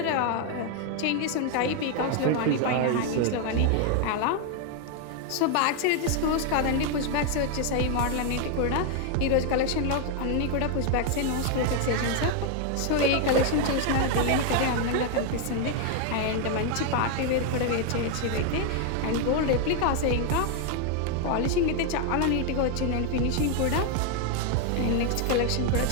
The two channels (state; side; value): different; both; correlation 0.01